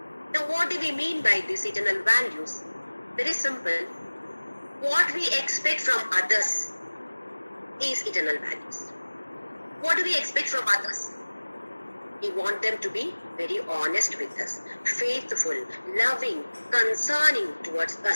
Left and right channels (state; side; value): inverted; both; correlation -1.00